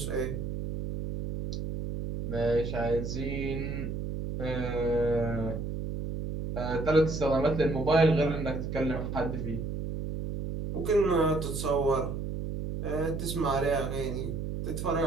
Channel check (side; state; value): right; noise; hum, 4 dB below the sound